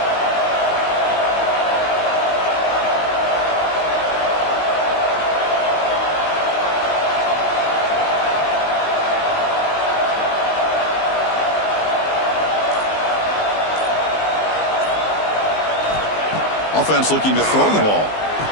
Offense looking to throw the ball.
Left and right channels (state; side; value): late; right; 19 ms